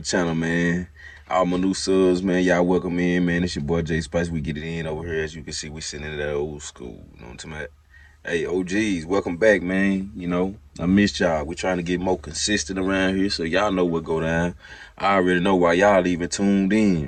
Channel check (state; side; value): identical; both; correlation 1.00